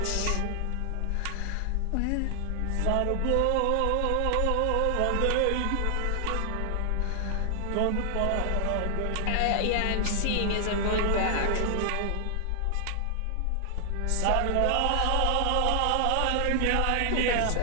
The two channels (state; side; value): different; both; correlation 0.00